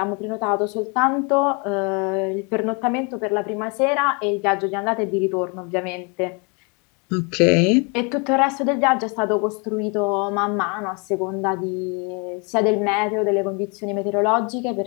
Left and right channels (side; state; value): right; quieter; 32.9 dB